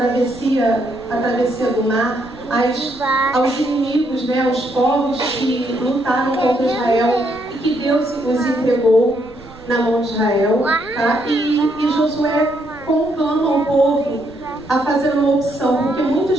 do mar, aos inimigos, né, aos povos que lutaram contra Israel e que Deus os entregou na mão de Israel, tá? E Josué conclama o povo a fazer uma opção, porque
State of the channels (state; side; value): noise; right; rumble, 25 dB below the sound